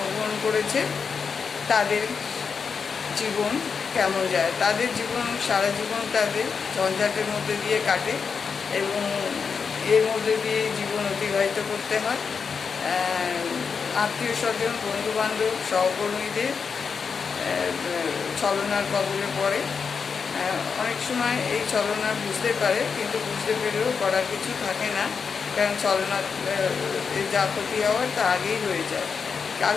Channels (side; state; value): right; quieter; 5.8 dB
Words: করেছে তাদের জীবন কেমন যায়, তাদের জীবন সারা জীবন তাদের ঝঞ্ঝাটের মধ্যে দিয়ে কাটে এবং এর মধ্যে দিয়ে জীবন অতিবাহিত করতে হয়। আত্মীয় স্বজন, বন্ধুবান্ধব, সহকর্মীদের ছলনার কবলে পড়ে। অনেক সময় এই ছলনা বুঝতে পারে, কিন্তু বুঝতে পেরেও করার কিছু থাকে না, কারণ ছলনা যা ক্ষতি হওয়ার তা আগেই হয়ে যায়।